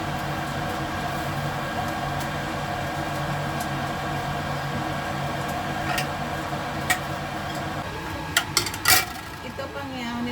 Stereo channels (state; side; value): identical; both; correlation 1.00